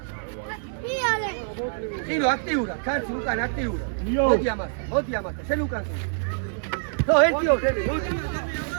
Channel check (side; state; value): left; silent; digital silence